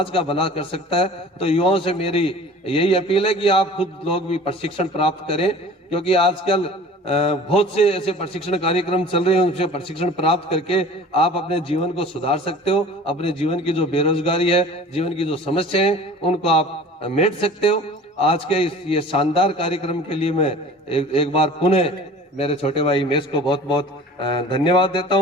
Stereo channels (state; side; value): normal; both; correlation 0.43